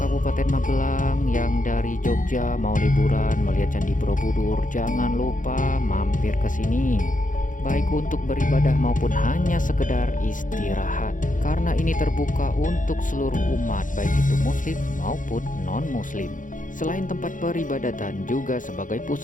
Magelang yang dari Jogja mau liburan melihat Candi Borobudur, jangan lupa mampir ke sini. Baik untuk beribadah maupun hanya sekedar istirahat. Karena ini terbuka untuk seluruh umat, baik itu muslim maupun non-muslim. Selain tempat peribadatan, juga sebagai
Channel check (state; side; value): late; right; 0.38 ms